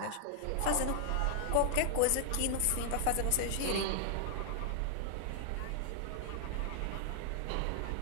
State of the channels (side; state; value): both; different; correlation 0.00